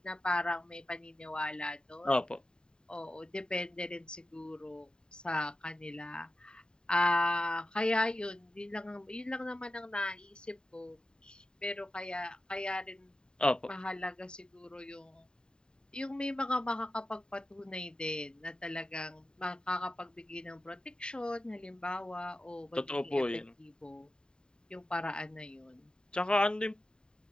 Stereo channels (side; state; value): right; late; 0.048 ms